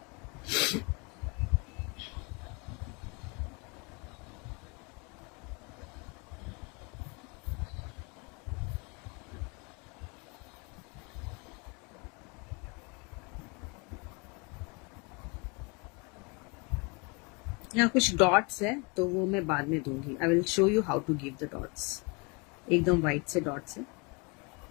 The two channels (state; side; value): quieter; right; 30.9 dB